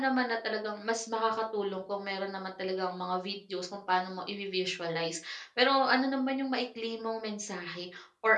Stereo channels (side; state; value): both; identical; correlation 1.00